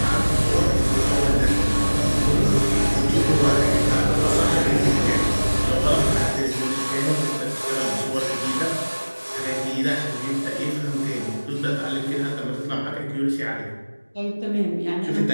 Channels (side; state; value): both; inverted; correlation -1.00